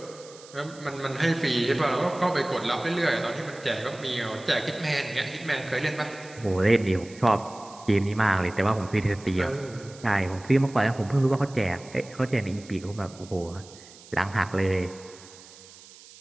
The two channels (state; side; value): noise; right; hiss, 21 dB below the sound